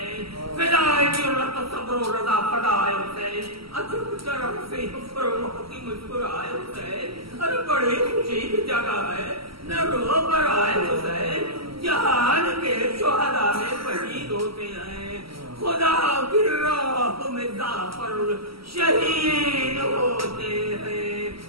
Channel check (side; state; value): left; late; 0.75 ms